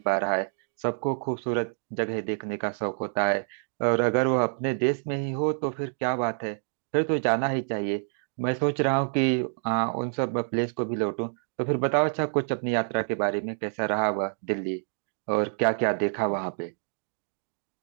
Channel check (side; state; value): left; silent; digital silence